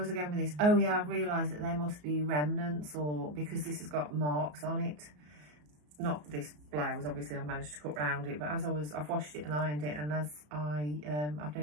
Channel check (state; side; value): late; left; 34 ms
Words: I going with this? Oh yeah, I've realised that they must be remnants, or because this has got marks on it. Not this blouse, obviously I've managed to cut round it, but as I've washed it and ironed it, and as I've